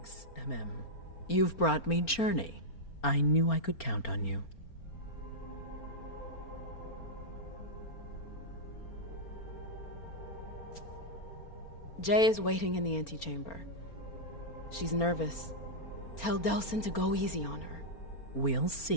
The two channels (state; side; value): late; right; 4.4 ms